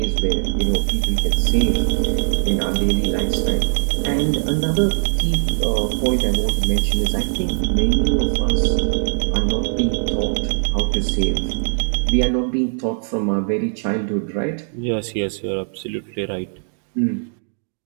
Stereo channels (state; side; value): silent; left; digital silence